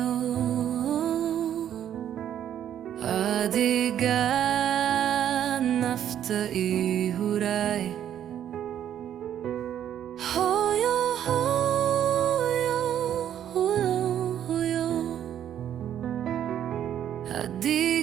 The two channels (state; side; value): quieter; left; 10.3 dB